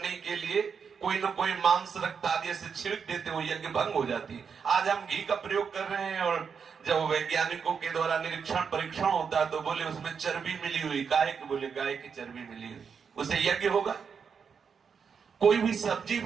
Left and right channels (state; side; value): quieter; left; 6.3 dB